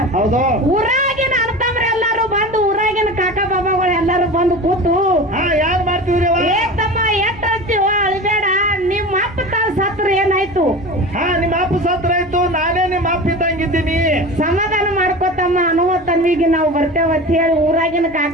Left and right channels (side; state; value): both; normal; correlation 0.32